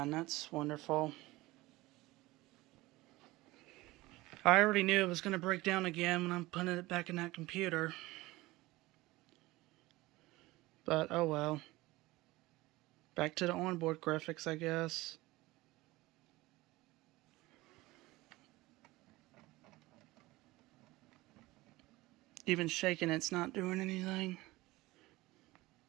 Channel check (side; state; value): left; quieter; 19.6 dB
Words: That's wonderful. I already knew it was going to break down again when I'm putting it back in that computer. But oh well. Back to the onboard graphics, I guess. Even shaking it's not doing anything.